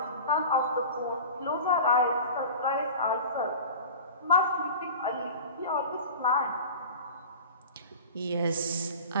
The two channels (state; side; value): inverted; both; correlation -0.35